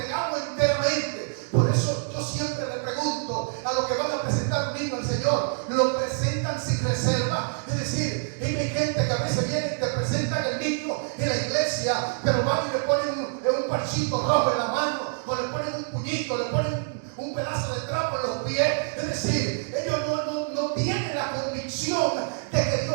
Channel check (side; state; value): left; silent; digital silence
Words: enteramente. Por eso yo siempre le pregunto a los que van a presentar un niño al Señor, lo presentan sin reserva. Es decir, hay gente que a veces viene y te presentan el niño en la iglesia, pero van y le ponen un parchito rojo en la mano, o le ponen un puñito, le ponen un pedazo de trapo en los pies. Es decir, ellos no tienen la convicción de que